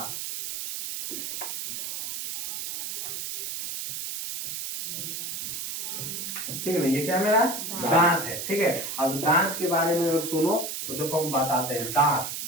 ठीक है ना। ये क्या मेरा दांत है, ठीक है। अब दांत के बारे में अगर सुनो तो देखो हम बताते हैं। दांत,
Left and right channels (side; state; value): right; noise; hiss, 5 dB below the sound